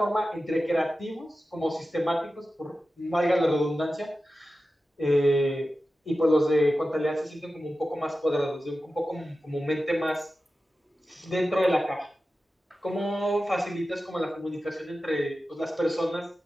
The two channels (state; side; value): normal; both; correlation 0.93